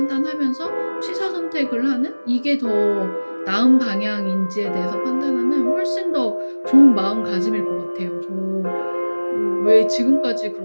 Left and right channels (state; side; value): inverted; both; correlation -1.00